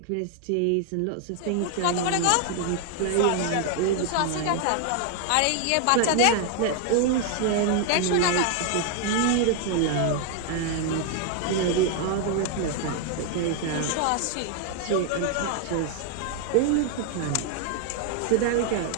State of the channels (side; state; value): both; different; correlation 0.00